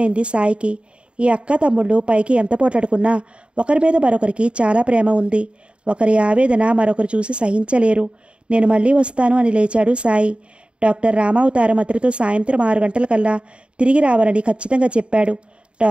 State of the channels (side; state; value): left; late; 0.056 ms